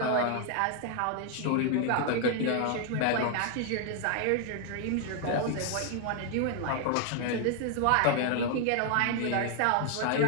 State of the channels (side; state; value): both; different; correlation 0.00